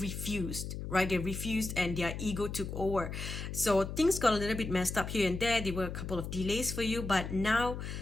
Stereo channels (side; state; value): left; noise; hum, 6 dB below the sound